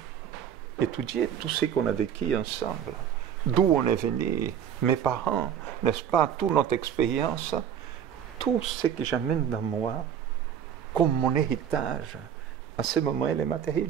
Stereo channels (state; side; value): quieter; left; 8.9 dB